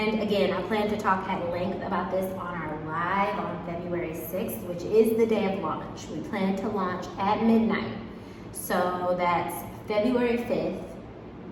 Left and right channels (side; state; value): both; identical; correlation 1.00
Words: again, I plan to talk at length about this on our live on February 6th, which is the day of launch. We plan to launch at midnight. So that's February 5th,